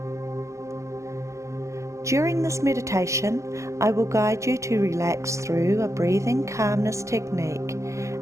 During this meditation, I will guide you to relax through a breathing calmness technique,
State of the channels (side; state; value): left; late; 0.15 ms